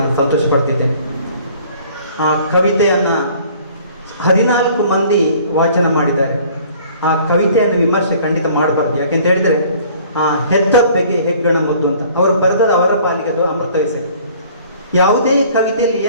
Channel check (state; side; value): inverted; both; correlation -0.53